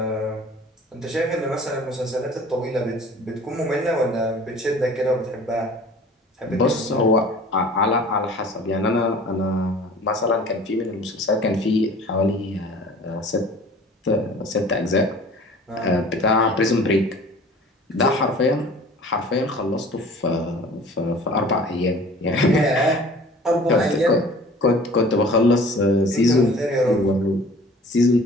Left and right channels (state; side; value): normal; both; correlation 0.46